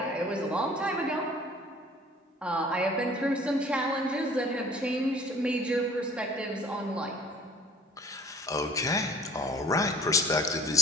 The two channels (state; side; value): normal; both; correlation 0.50